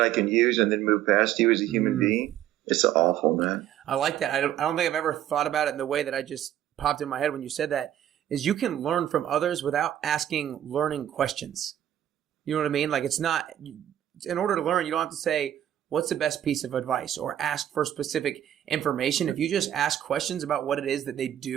can use and then move past you as a human being? It's awful, man. I like that. I don't think I've ever thought about it in the way that I just popped in my head when you said that, is you can learn from others without asking learning questions. You know what I mean? Like, it's not, in order to learn, you don't have to say, what's the best piece of advice, or ask for specific information. If you just ask questions about what it is that they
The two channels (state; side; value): quieter; left; 11.5 dB